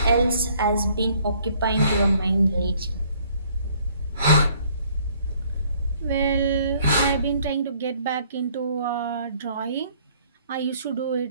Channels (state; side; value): inverted; both; correlation -0.62